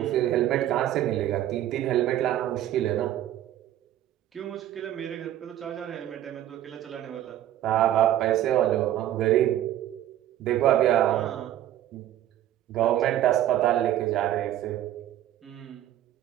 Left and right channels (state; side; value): quieter; left; 12.5 dB